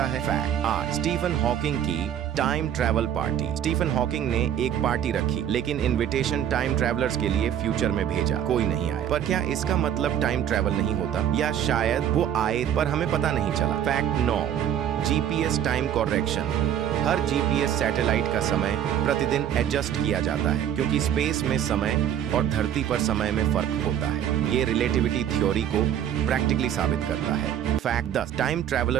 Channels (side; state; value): left; quieter; 9.9 dB